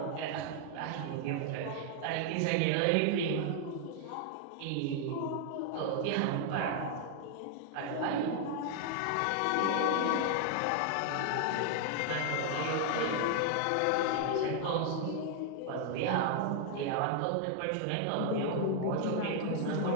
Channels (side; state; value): both; different; correlation 0.00